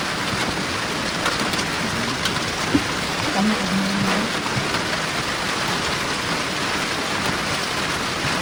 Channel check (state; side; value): identical; both; correlation 1.00